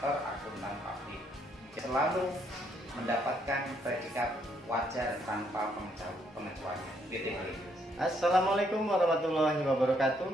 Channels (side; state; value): both; normal; correlation 0.72